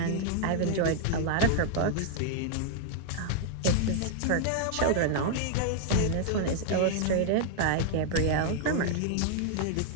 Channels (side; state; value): both; different; correlation 0.00